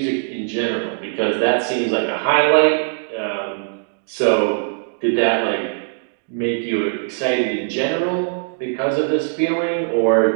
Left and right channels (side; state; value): left; silent; digital silence